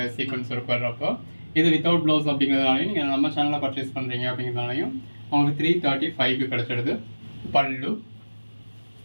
சீக்வன்ஸ் ஒர்க் வர்றப்போ இது வித்தவுட் ப்ளவுஸ் அப்படிங்கிறதுனாலையும் நீங்கள் நம்ம சேனலில் பர்ச்சேஸ் பண்ணுறீங்க அப்படிங்கிறதுனாலையும் உங்களுக்கு 335க்கு கிடைச்சிடுது. பல்லு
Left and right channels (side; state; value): both; inverted; correlation -1.00